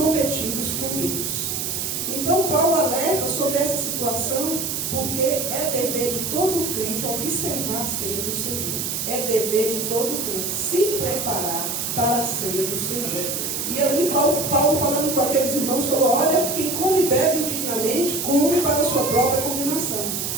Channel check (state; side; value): noise; right; hiss, 2 dB below the sound